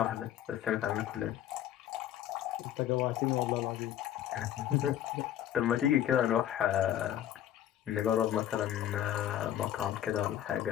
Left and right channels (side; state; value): right; quieter; 11.3 dB